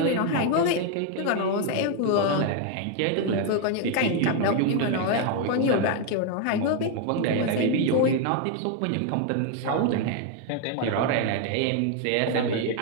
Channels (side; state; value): both; different; correlation 0.01